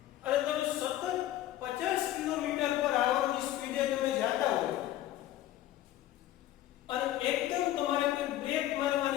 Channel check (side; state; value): right; quieter; 13.7 dB